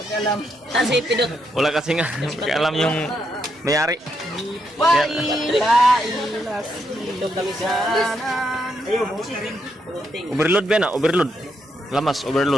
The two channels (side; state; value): both; normal; correlation 0.79